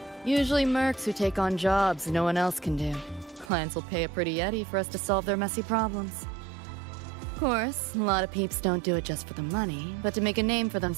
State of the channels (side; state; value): left; drops out; at 3.5 s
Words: Usually mercs who take on jobs no one else can do. Clients will pay a pretty Eddie for us to solve their messy problems. Of course, a lot of peeps don't do it just for the money, but to make a name for